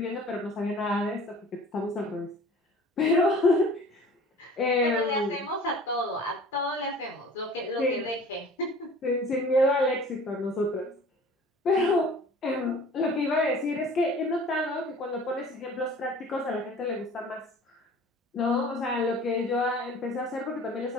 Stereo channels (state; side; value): normal; both; correlation 0.46